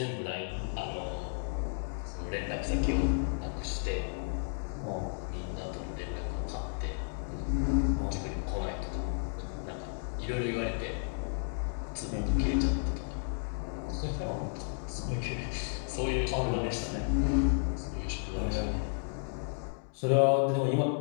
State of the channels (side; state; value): right; silent; 56 dB below the other